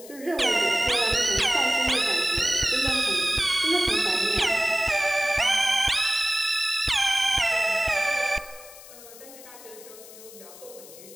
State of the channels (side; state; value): left; noise; hiss, 18 dB below the sound